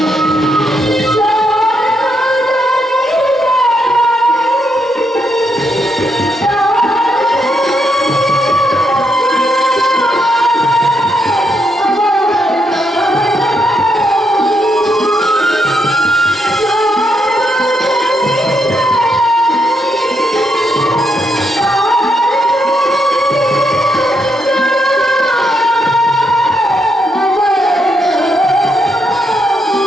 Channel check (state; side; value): normal; both; correlation 0.79